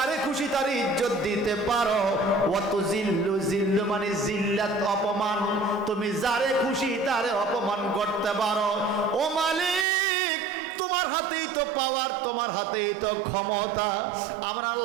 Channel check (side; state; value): left; drops out; at 9.9 s